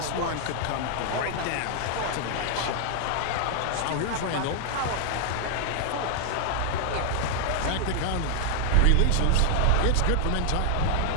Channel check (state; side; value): different; both; correlation 0.00